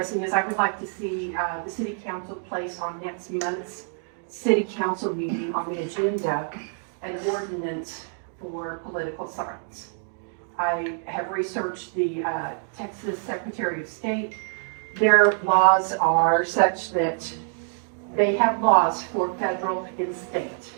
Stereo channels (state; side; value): silent; left; 60 dB below the other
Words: is I would like to see the city council place on next month's city council meeting on the agenda an ordinance for political signs. I have researched the Texas Secretary of State. Their laws are such that they have laws for federal and state.